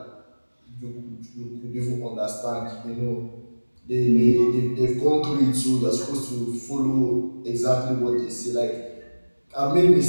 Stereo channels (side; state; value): both; inverted; correlation -1.00